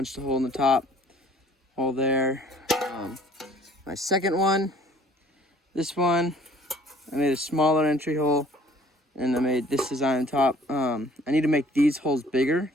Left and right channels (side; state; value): both; normal; correlation 0.54